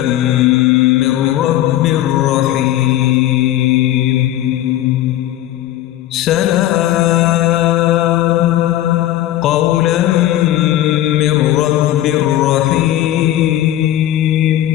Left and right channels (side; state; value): right; quieter; 13.5 dB